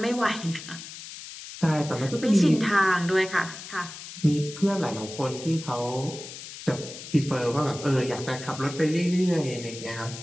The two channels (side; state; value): left; noise; hiss, 12 dB below the sound